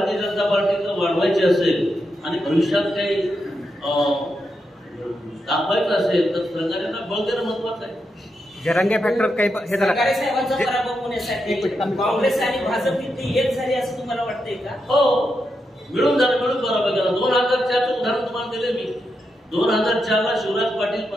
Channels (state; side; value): normal; both; correlation 0.85